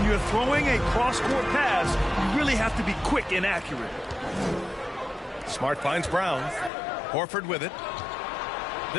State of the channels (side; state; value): right; drops out; at 6.7 s